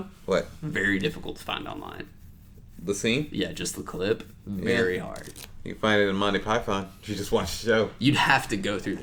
What? Very difficult to find online. The scene? Yeah, just the clip. Very hard. You can find it in Monty Python. You just watch the show. You'd have to go through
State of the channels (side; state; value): both; identical; correlation 1.00